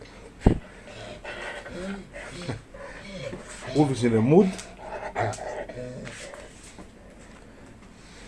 Wolf is in a mood.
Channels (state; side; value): identical; both; correlation 1.00